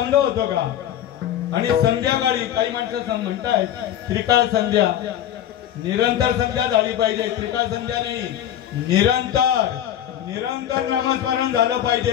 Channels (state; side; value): quieter; right; 11.0 dB